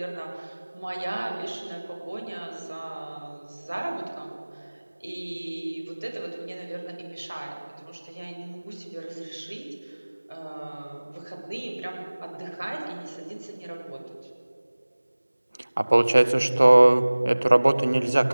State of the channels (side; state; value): both; inverted; correlation -1.00